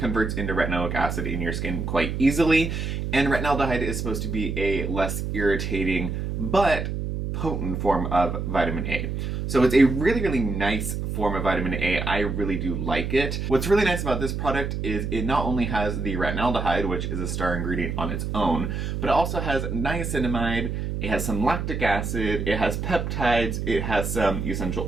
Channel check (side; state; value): right; noise; hum, 3 dB below the sound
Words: into retinoic acid in your skin quite easily. And retinaldehyde is supposed to be a less irritating but potent form of vitamin A. So it's a really nice form of vitamin A. I really do like it. What's really nice about this product is it not only has the retinaldehyde, which is a star ingredient on its own, but it also has niacinamide, it has some lactic acid, it has peptides, it has some essential